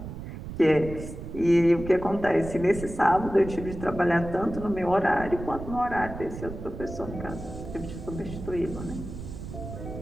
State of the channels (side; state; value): right; noise; rumble, 10 dB below the sound